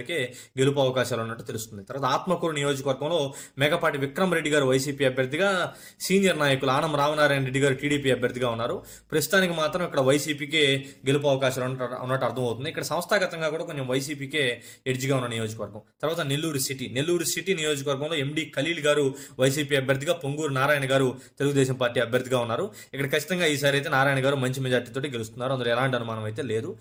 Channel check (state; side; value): identical; both; correlation 1.00